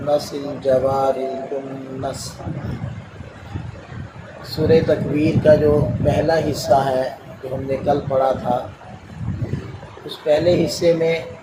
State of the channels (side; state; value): both; identical; correlation 1.00